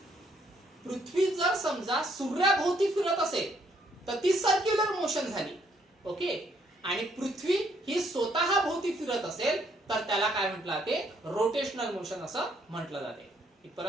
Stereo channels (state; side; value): normal; both; correlation 0.69